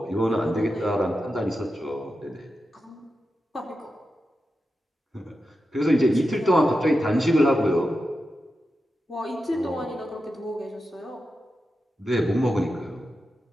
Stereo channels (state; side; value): normal; both; correlation 0.90